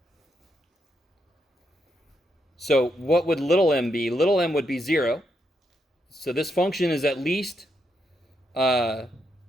So what would little m be? Little m would be 0. So this function is at least 0,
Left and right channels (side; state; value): both; normal; correlation 0.80